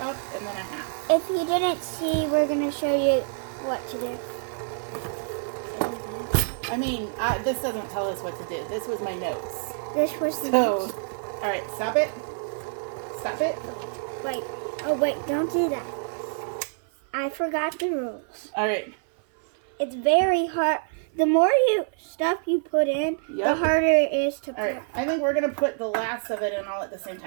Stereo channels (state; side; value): silent; left; 57 dB below the other